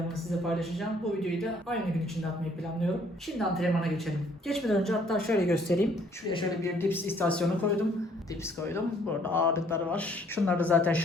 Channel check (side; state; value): both; normal; correlation 0.62